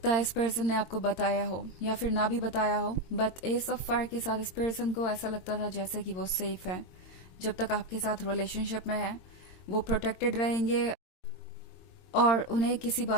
है इस पर्सन ने आपको बताया हो या फिर ना भी बताया हो, बट एस ऑफ फायर के साथ इस पर्सन को ऐसा लगता था जैसे कि वो सेफ है। जब तक आपके साथ रिलेशनशिप में है वो प्रोटेक्टेड रहेंगे और उन्हें किसी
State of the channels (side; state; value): right; late; 22 ms